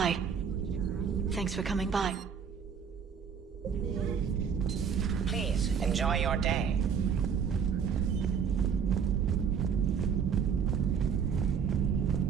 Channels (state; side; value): quieter; left; 7.1 dB